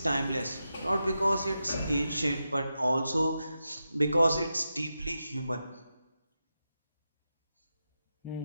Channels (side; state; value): both; inverted; correlation -0.89